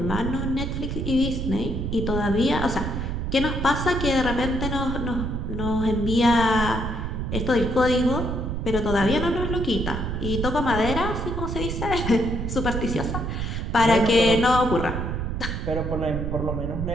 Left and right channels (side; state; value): right; noise; rumble, 3 dB below the sound